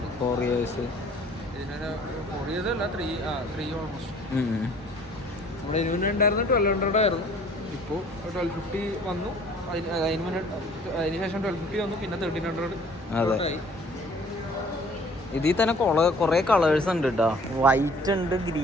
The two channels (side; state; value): both; normal; correlation 0.54